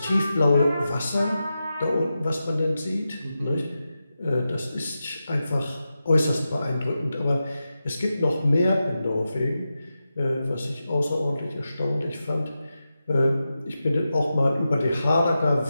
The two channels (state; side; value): inverted; both; correlation -0.91